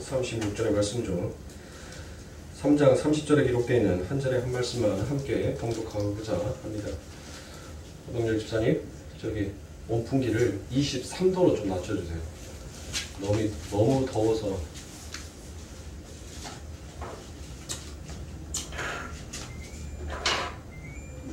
말씀 중 3장 30절에 기록되어 있는 한 절의 한 말씀만 함께 봉독하고자 합니다. 호동열 집사님, 저기 온풍기를 23도로 좀 낮춰주세요. 너무 더워서.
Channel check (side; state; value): both; identical; correlation 1.00